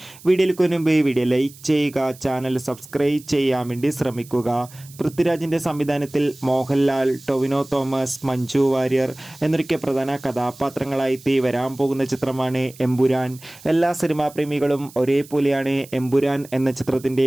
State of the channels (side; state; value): right; noise; hiss, 21 dB below the sound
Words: വീഡിയോയിലേക്ക് മുമ്പ് വീഡിയോ ലൈക്ക് ചെയ്യുക, ചാനൽ സബ്സ്ക്രൈബ് ചെയ്യാൻ വേണ്ടി ശ്രമിക്കുക. പൃഥ്വിരാജിൻ്റെ സംവിധാനത്തിൽ മോഹൻലാൽ, ടൊവിനോ തോമസ്, മഞ്ജു വാര്യർ എന്നൊക്കെ പ്രധാന കഥാപാത്രങ്ങളായി വരാൻ പോകുന്ന ചിത്രമാണ് എമ്പുരാൻ. എല്ലാ സിനിമാ പ്രേമികളും ഒരേപോലെയാണ് എമ്പുരാൻ എന്ന ചിത്രത്തിൻ്റെ